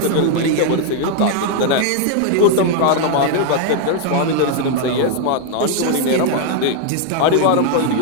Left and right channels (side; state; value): both; different; correlation 0.00